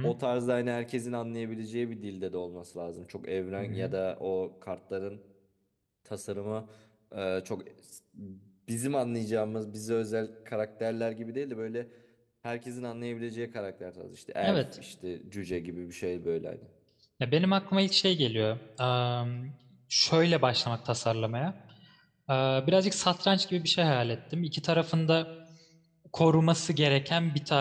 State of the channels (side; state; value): both; identical; correlation 1.00